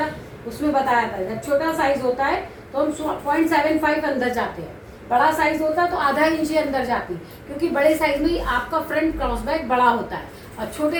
उसमें बताया था, जब छोटा साइज होता है तो हम 0.75 अंदर जाते हैं, बड़ा साइज होता है तो आधा इंच ही अंदर जाती, क्योंकि बड़े साइज में ही आपका फ्रंट क्रॉस बैक बड़ा होता है और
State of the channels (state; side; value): identical; both; correlation 1.00